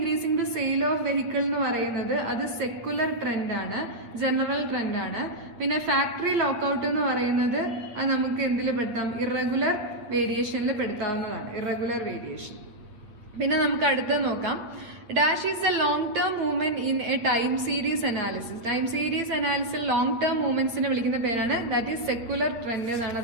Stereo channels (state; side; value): late; left; 8.7 ms